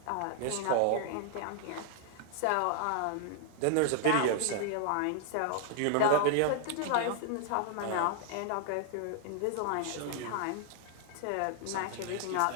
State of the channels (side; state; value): both; different; correlation 0.00